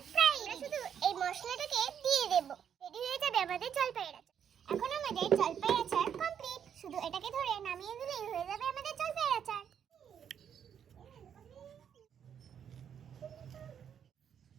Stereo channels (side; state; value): left; quieter; 8.4 dB